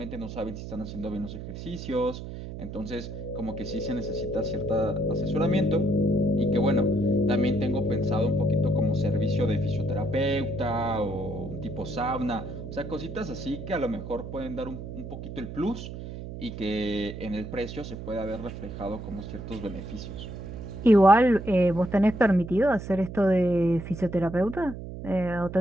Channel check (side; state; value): right; noise; hum, 9 dB below the sound